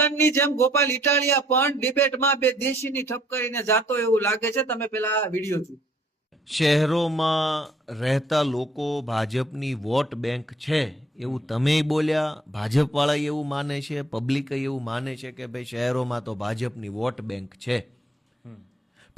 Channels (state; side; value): normal; both; correlation 0.63